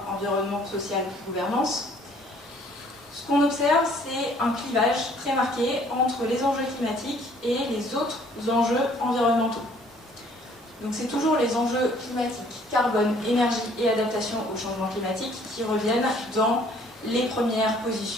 environnement, social, gouvernance. Ce qu'on observe, c'est un clivage très marqué entre les enjeux climatiques et les autres enjeux environnementaux. Donc c'est toujours les enjeux climatiques, carbone, énergie et adaptation au changement climatique qui reviennent dans les premières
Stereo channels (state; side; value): normal; both; correlation 0.59